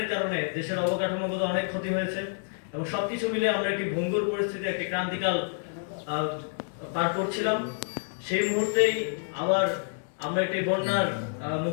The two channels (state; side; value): silent; right; 59 dB below the other